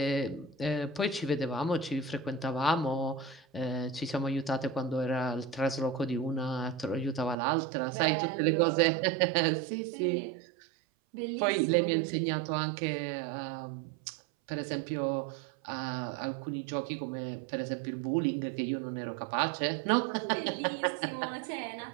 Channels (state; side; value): drops out; left; at 7.4 s